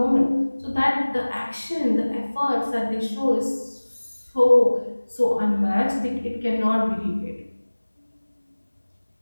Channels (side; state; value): both; inverted; correlation -1.00